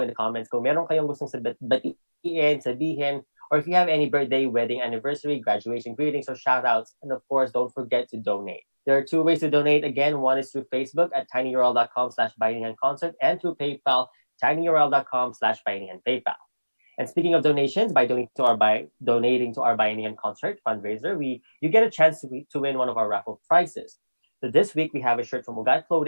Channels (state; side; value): inverted; both; correlation -1.00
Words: the comments kung meron kayong gustong batiin, sabihin, or if you have any birthday, wedding, anniversary, graduation greetings, or shoutouts. And of course, don't forget to donate. There are two ways to donate. Again, one is through Facebook at tinyurl.com/bayanihanconcert and through PayPal, tinyurl.com/bayanihanpaypal. And speaking of donations, by donating to our Bayanihan concert fundraiser, you get a chance to win one of our raffle prizes. So this week we have a shirt from Ugat